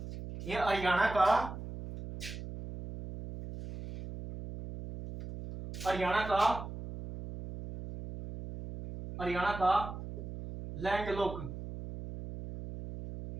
ये हरियाणा का, हरियाणा का, हरियाणा का लैंडलॉक,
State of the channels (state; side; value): noise; right; hum, 10 dB below the sound